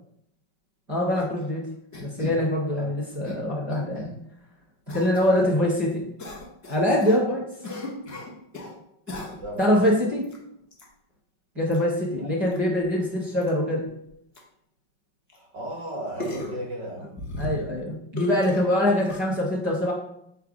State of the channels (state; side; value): late; left; 5.3 ms